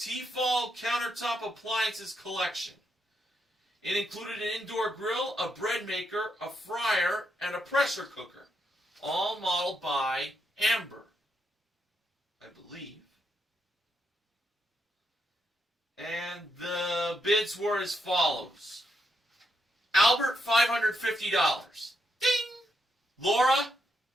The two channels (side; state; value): both; normal; correlation 0.80